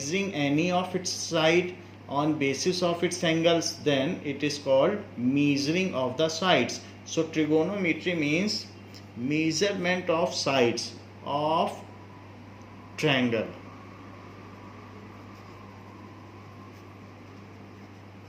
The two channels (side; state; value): both; identical; correlation 1.00